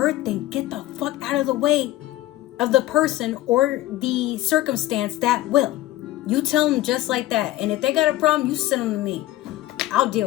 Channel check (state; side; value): quieter; right; 15.6 dB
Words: then get the fuck out of the way of the person or the circumstance that will. You tell them just like that. And if they got a problem, you send them to me. I'll